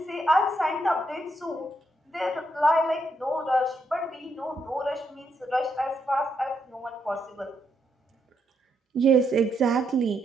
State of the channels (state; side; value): normal; both; correlation 0.78